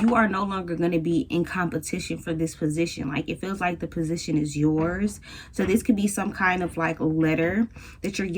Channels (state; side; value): identical; both; correlation 1.00